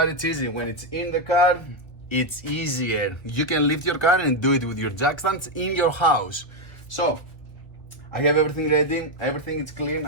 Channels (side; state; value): right; late; 1.5 ms